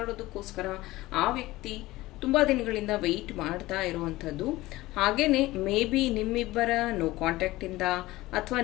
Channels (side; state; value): right; quieter; 18.4 dB